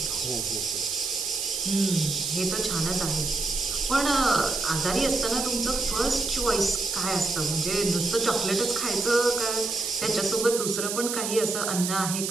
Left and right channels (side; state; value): right; noise; hiss, 2 dB below the sound